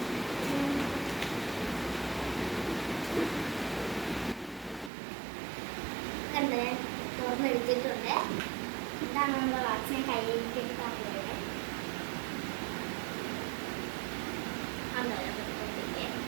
കണ്ട് തുറന്നെടുത്തിട്ടുണ്ട്. ഇതാണ് നമ്മുടെ വാച്ചിനെ കയ്യിലേക്ക് കാണുന്നത്.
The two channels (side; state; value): left; drops out; at 4.9 s